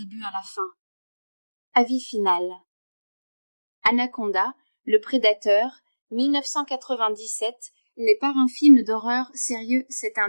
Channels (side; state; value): both; inverted; correlation -1.00